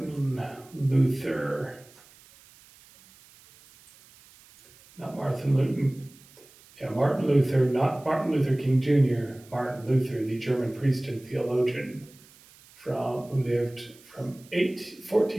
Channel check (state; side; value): noise; right; hiss, 25 dB below the sound